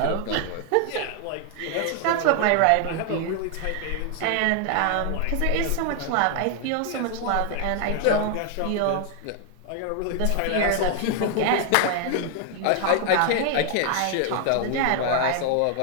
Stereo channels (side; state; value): both; different; correlation 0.00